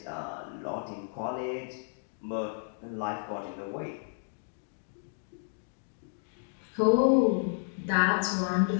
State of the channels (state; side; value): silent; right; digital silence